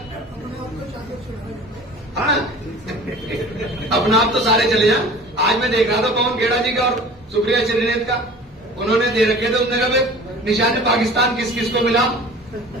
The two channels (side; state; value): both; normal; correlation 0.43